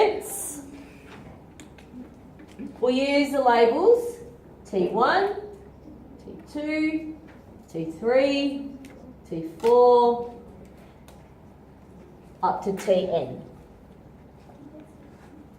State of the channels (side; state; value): both; identical; correlation 1.00